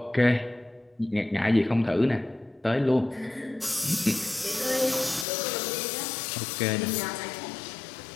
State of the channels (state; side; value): drops out; right; at 5.2 s